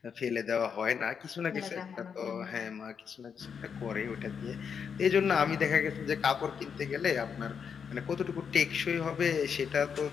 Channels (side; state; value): right; quieter; 6.8 dB